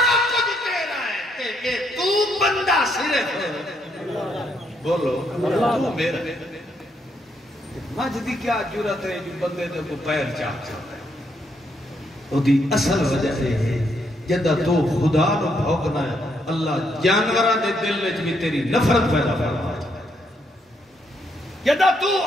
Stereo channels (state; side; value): normal; both; correlation 0.75